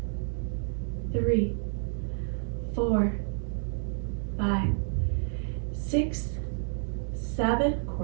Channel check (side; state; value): left; silent; digital silence